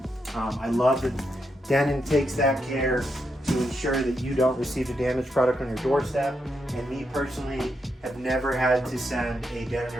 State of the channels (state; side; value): normal; both; correlation 0.82